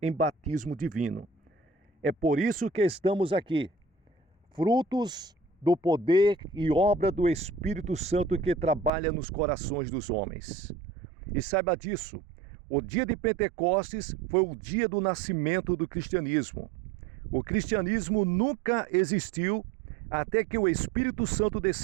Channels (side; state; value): left; drops out; at 8.9 s